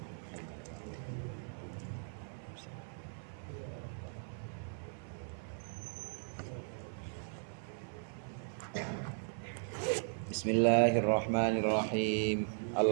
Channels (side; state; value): left; silent; 53 dB below the other